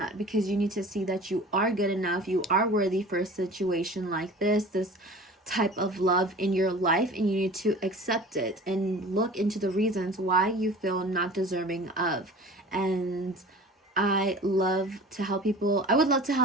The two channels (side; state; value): both; normal; correlation 0.42